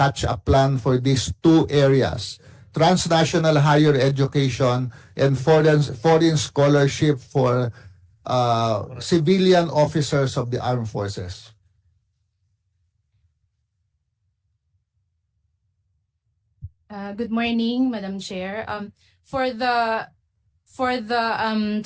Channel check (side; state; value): both; identical; correlation 1.00